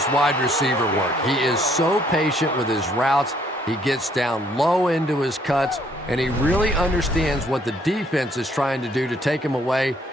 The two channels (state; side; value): normal; both; correlation 0.65